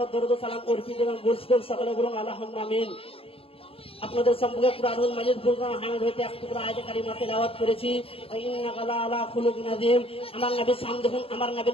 দরুদ ও সালাম অর্পিত এবং বর্ষিত সকলে বলুন আল্লাহুম্মা আমিন। আপনাদের সম্পর্কে কুরআনুল মাজিদ ফুরকান হামিদ হইতে এক টুকরা আয়াতে কারিমা তেলাওয়াত করেছি। ইন্নাকা লাআলা খুলুকিন আযীম। আমার নবীর শান দেখুন, আমার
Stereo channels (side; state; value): right; late; 0.27 ms